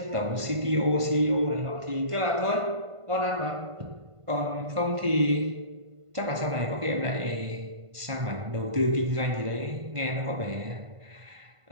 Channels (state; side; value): late; left; 1.5 ms